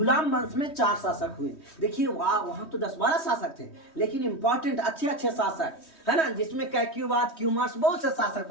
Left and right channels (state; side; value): late; right; 3.2 ms